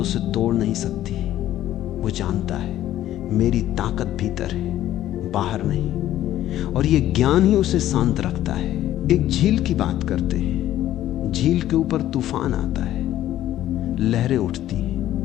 उसे तोड़ नहीं सकती। वो जानता है मेरी ताकत भीतर है, बाहर नहीं। और ये ज्ञान ही उसे शांत रखता है। एक झील की बात करते हैं। झील के ऊपर तूफान आता है, लहरें उठती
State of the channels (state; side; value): quieter; right; 13.1 dB